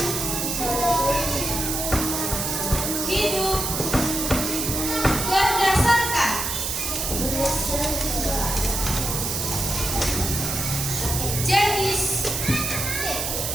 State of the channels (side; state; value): right; noise; hiss, 2 dB below the sound